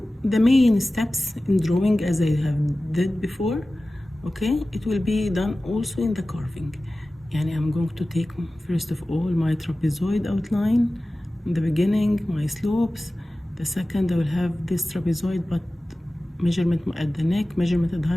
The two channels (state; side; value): normal; both; correlation 0.96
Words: the main steps in drawing, as I have did before, okay, it will be done also in the carving. Yani I'm going to take first of all my trapezoid outline in the beginning, my slopes. The second I will have this trapezoid but measurement at the neck, measurement at the